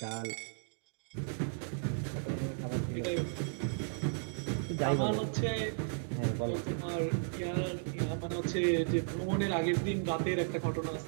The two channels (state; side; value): silent; left; digital silence